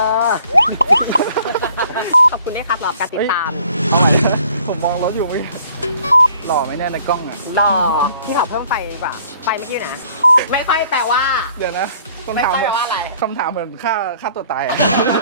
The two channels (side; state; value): both; inverted; correlation -0.58